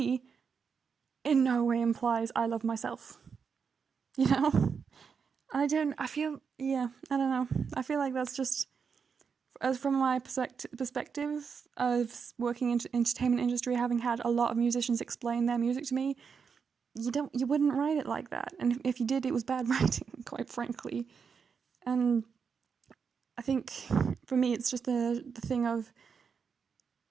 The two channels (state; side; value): quieter; left; 6.1 dB